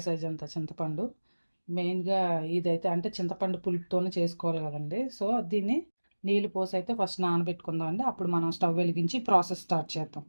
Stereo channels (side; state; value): both; inverted; correlation -1.00